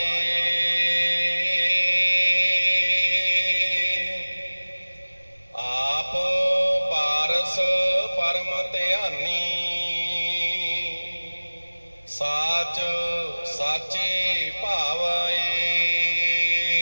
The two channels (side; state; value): both; inverted; correlation -1.00